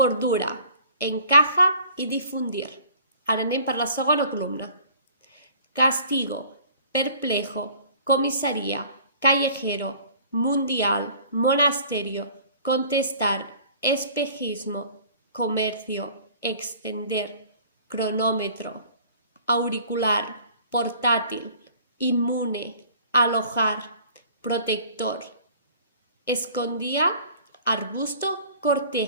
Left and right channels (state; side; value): inverted; both; correlation -0.50